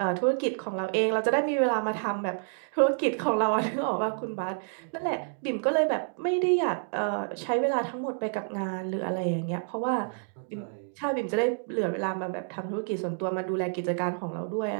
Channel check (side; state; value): left; silent; digital silence